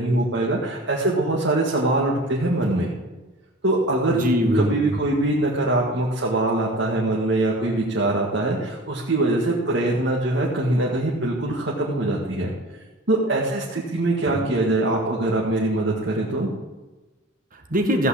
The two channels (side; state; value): both; normal; correlation 0.39